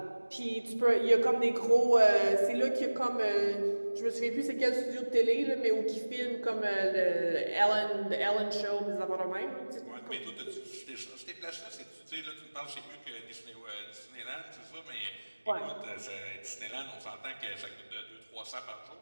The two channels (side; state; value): both; inverted; correlation -1.00